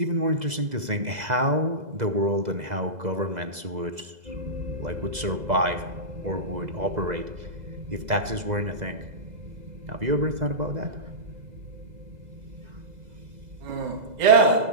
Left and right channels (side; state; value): left; late; 2.0 ms